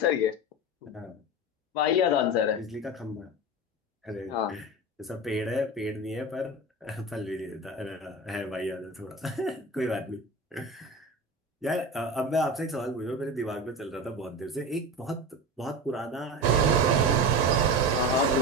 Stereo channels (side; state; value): both; normal; correlation 0.26